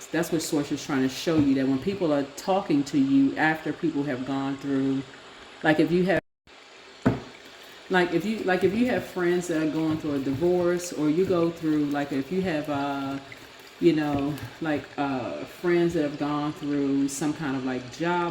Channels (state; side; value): identical; both; correlation 1.00